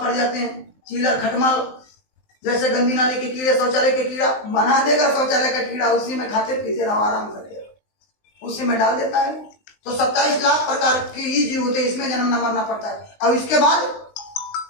जाते हैं, चीलर, खटमल, जैसे गंदी नाली के कीड़े, शौचालय के कीड़ा बना देगा, शौचालय का कीड़ा उसी में खाते पीते रहो, आराम करते रहो, उसी में डाल देता है। तो 27 लाख प्रकार के ही जीव होते हैं, इसमें जन्म न मरना पड़ता है। और इसके बाद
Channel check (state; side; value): late; right; 19 ms